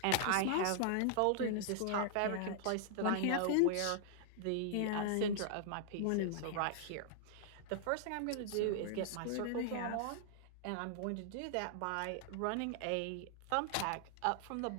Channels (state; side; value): different; both; correlation -0.01